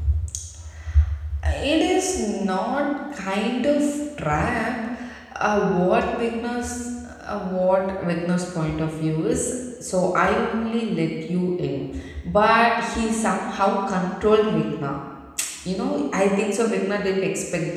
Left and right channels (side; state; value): both; identical; correlation 1.00